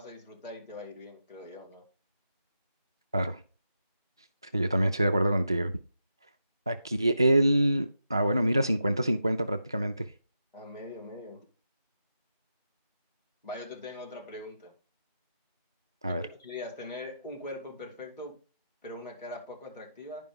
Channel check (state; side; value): inverted; both; correlation -0.87